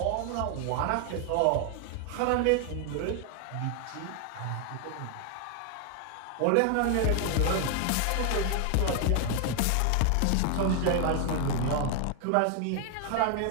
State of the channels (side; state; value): both; different; correlation 0.00